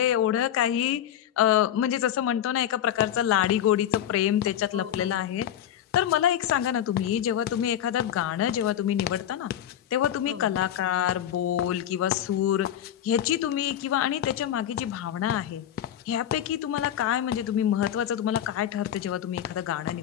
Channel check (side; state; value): right; quieter; 10.7 dB